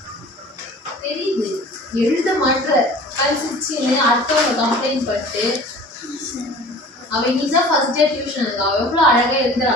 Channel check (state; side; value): normal; both; correlation 0.44